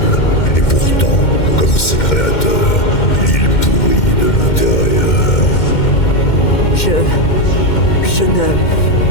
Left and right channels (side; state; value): right; late; 2.1 ms